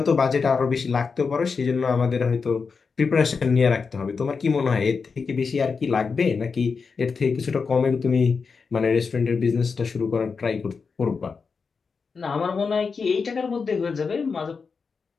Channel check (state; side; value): quieter; right; 5.1 dB